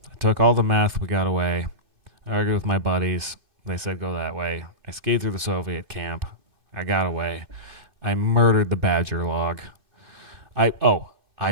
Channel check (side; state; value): left; late; 2.6 ms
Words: took all the meth, we got away. I argued with my buddies. They said go that way. I skied through the Soviet camp. I got away. I murdered the badger log. I